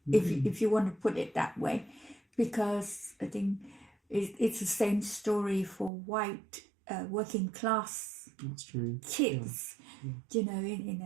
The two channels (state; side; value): drops out; left; at 5.9 s